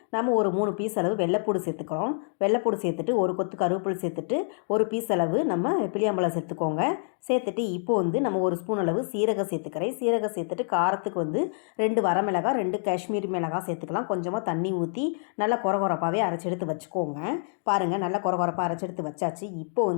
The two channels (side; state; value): right; silent; 60 dB below the other